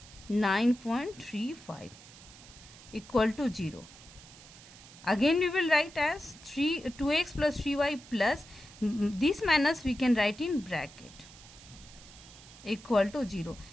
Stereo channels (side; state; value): right; noise; hiss, 20 dB below the sound